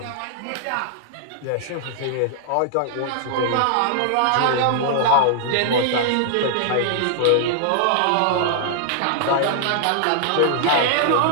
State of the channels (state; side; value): different; both; correlation -0.01